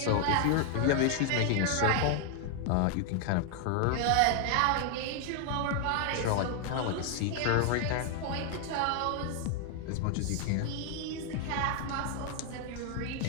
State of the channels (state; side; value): different; both; correlation 0.00